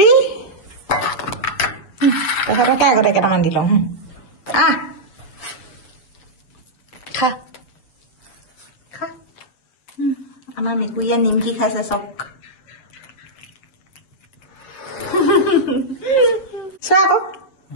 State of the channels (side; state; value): right; late; 7.4 ms